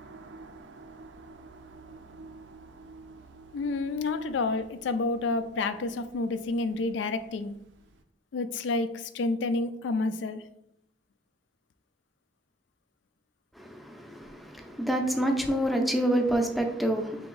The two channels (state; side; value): normal; both; correlation 0.50